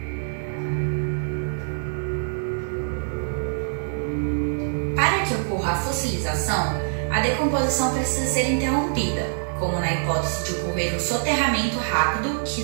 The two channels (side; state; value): left; silent; digital silence